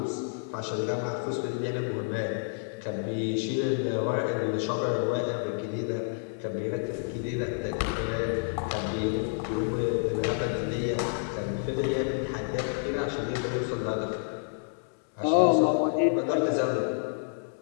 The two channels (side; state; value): right; silent; 58 dB below the other